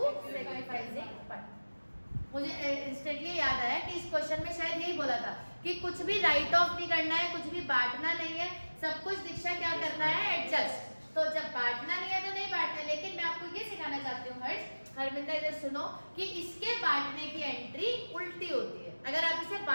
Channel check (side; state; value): both; inverted; correlation -1.00